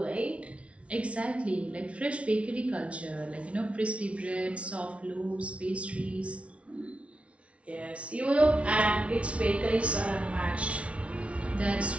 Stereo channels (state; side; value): late; left; 0.062 ms